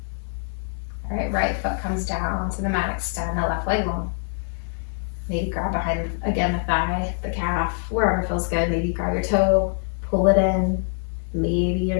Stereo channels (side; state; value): right; silent; digital silence